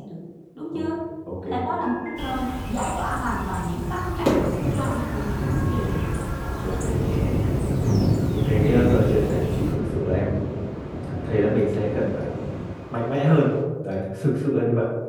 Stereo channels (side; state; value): both; identical; correlation 1.00